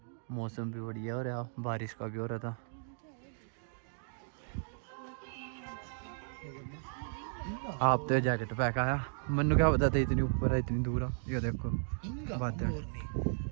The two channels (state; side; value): silent; left; digital silence